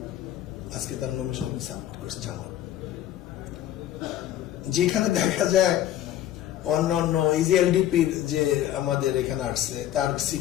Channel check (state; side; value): quieter; right; 12.2 dB